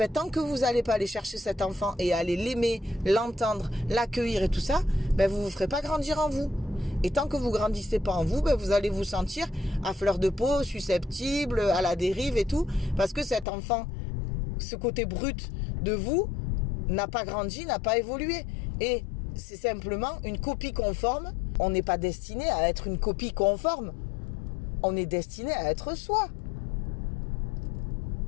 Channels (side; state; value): right; drops out; at 13.5 s